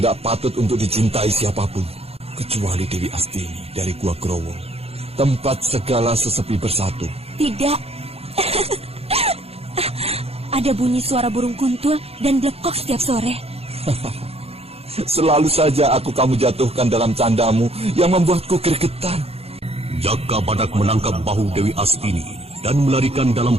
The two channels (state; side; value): late; left; 0.29 ms